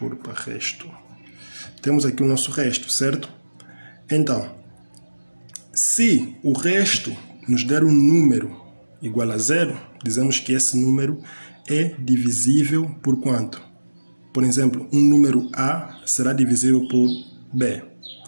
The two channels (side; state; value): both; inverted; correlation -1.00